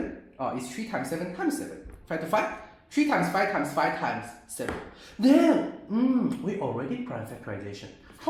It's 3 times 7 times 7. 5 to 5? 3 times 5 times 5 times 7. Then, we already prime factorization.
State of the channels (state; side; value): identical; both; correlation 1.00